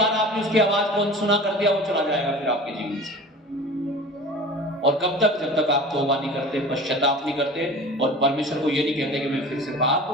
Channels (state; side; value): normal; both; correlation 0.38